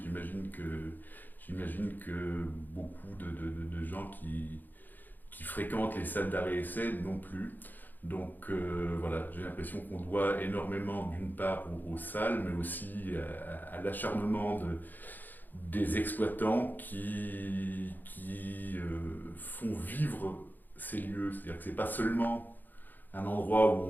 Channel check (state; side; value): late; right; 0.087 ms